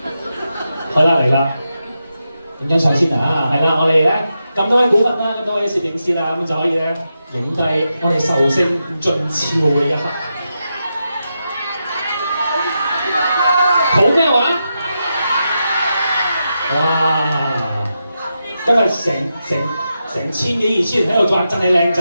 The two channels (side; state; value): both; inverted; correlation -0.87